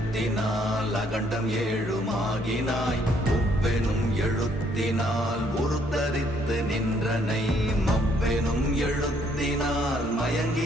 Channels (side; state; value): both; normal; correlation 0.67